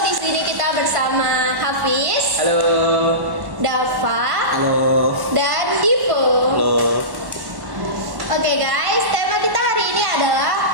di sini kita bersama Hafiz, Halo. Dava, Halo. dan Divo. Halo. Oke guys, tema kita hari ini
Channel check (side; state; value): left; late; 1.1 ms